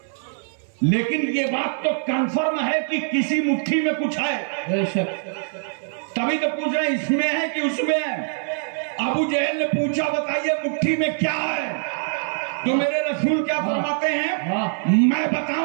لیکن یہ بات تو کنفرم ہے کہ کسی مٹھی میں کچھ ہے. بے شک. تبھی تو پوچھ رہے ہیں اس میں ہے کہ اس میں ہے. ابو جہل نے پوچھا بتائیے مٹھی میں کیا ہے؟ تو میرے رسول کیا فرماتے ہیں؟ میں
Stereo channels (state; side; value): silent; left; 63 dB below the other